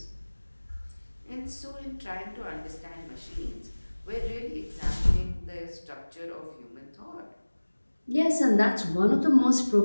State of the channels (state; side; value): inverted; both; correlation -1.00